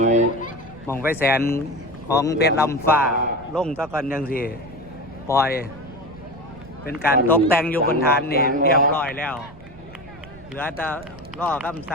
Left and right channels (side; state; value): right; noise; rumble, 21 dB below the sound